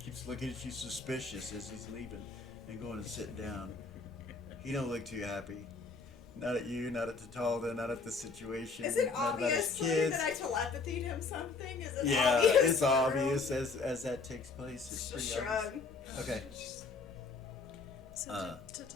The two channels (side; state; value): right; quieter; 4.3 dB